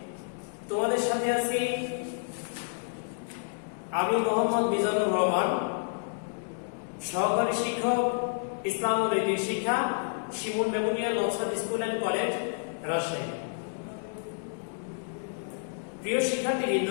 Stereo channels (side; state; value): right; silent; digital silence